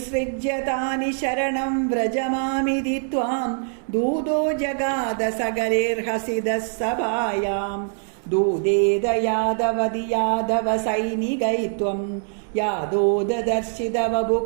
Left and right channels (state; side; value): silent; left; 63 dB below the other